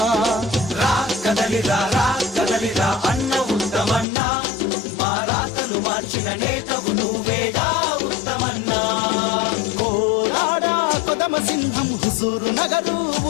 రా కదలిరా రా కదలిరా అన్న ఉత్తమన్నా, మా రాతలు మార్చిన నేతవు నువ్వేగా ఉత్తమన్నా. కోదాడ కొదమ సింహం హుజూరు నగరు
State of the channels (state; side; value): drops out; right; at 4.0 s